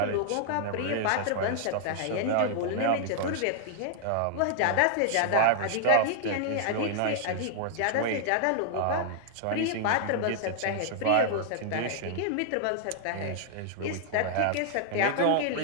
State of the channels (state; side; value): different; both; correlation -0.01